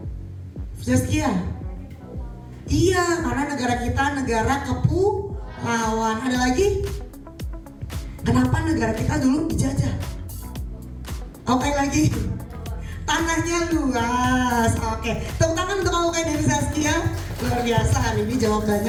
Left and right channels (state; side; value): identical; both; correlation 1.00